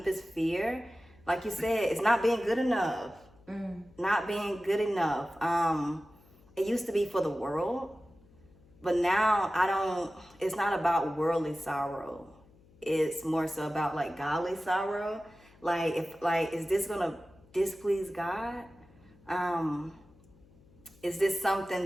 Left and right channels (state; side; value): noise; left; hum, 27 dB below the sound